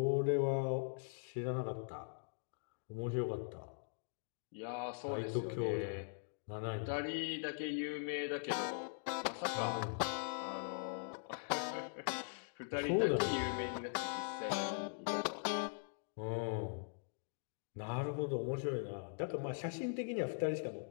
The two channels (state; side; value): silent; right; digital silence